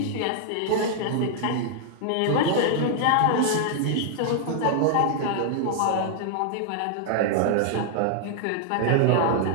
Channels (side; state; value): both; different; correlation -0.01